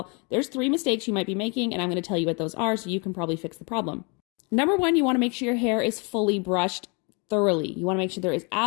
there's 3 mistakes you might be making, and I'm going to tell you what those are so you can probably fix the problem. Number 1, you want to make sure your hair is fully brushed thoroughly. You want to make sure there is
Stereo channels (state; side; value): quieter; right; 32.6 dB